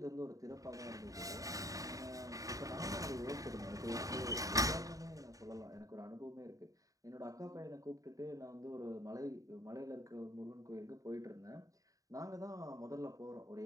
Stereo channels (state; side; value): late; left; 0.16 ms